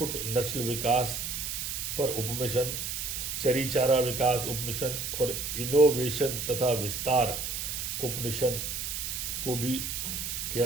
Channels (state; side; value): noise; right; hiss, 3 dB below the sound